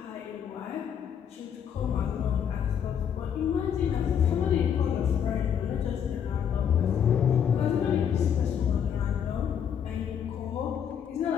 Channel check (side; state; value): right; quieter; 8.3 dB